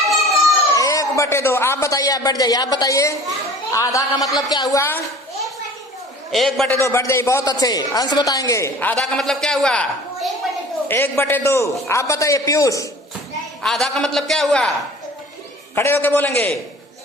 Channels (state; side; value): normal; both; correlation 0.44